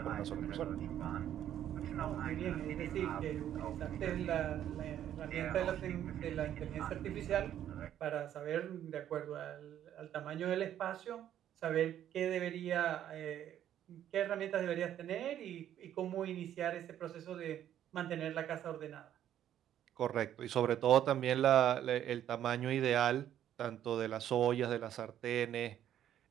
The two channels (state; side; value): quieter; left; 10.9 dB